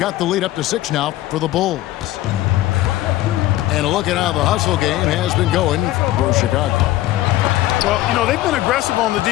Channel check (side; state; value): right; quieter; 15.6 dB